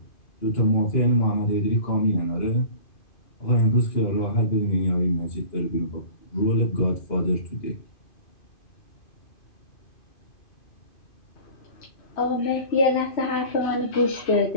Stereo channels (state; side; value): late; right; 2.5 ms